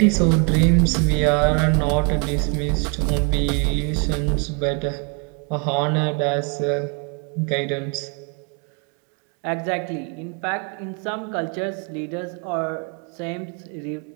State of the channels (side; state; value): left; quieter; 35.5 dB